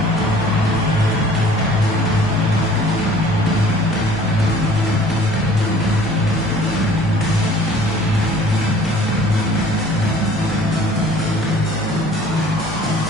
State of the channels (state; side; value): normal; both; correlation 0.51